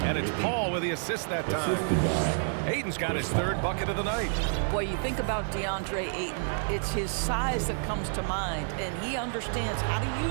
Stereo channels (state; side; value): silent; left; digital silence